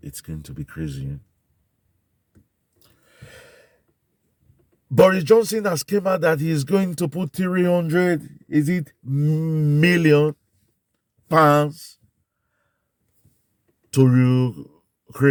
it's going to be crazy. Boris Johnson has came out that he's going to put 300, is it million pounds to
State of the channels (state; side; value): identical; both; correlation 1.00